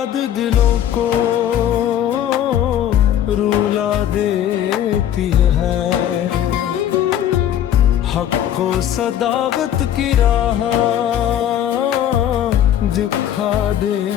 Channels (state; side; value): quieter; right; 10.7 dB